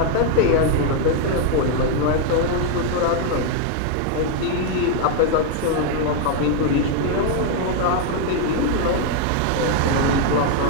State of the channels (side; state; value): both; different; correlation 0.00